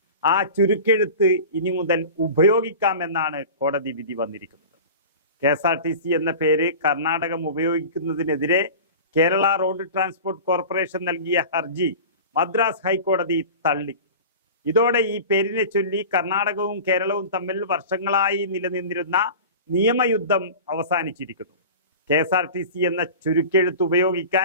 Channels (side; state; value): both; inverted; correlation -0.35